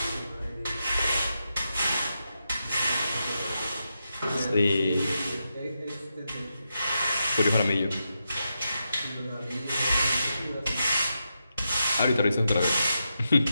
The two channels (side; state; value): both; inverted; correlation -0.86